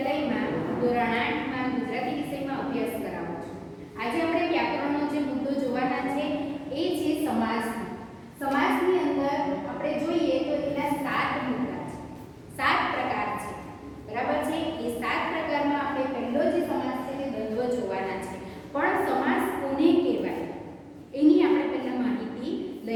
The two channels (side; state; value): both; identical; correlation 1.00